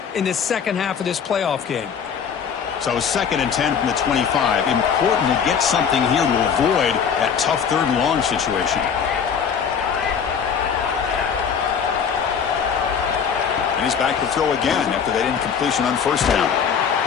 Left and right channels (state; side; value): quieter; right; 7.0 dB